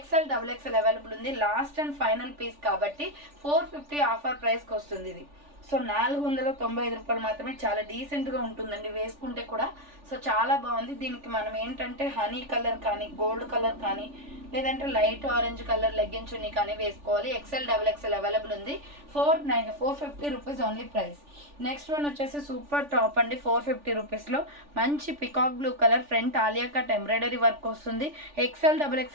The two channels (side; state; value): left; late; 3.4 ms